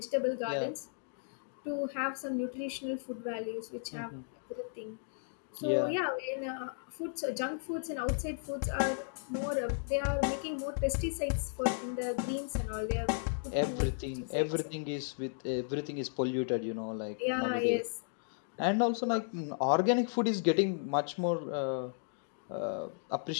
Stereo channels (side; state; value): right; silent; digital silence